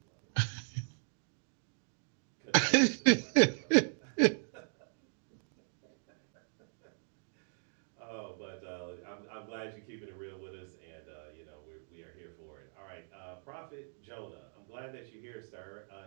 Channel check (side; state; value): left; silent; digital silence